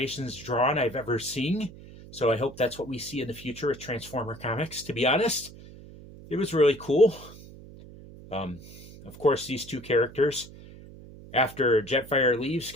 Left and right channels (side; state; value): right; noise; hum, 18 dB below the sound